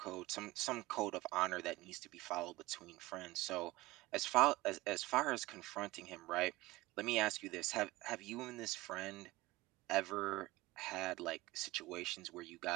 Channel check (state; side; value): quieter; left; 19.5 dB